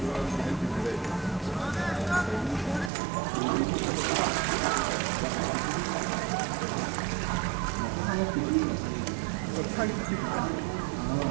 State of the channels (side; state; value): left; drops out; at 2.9 s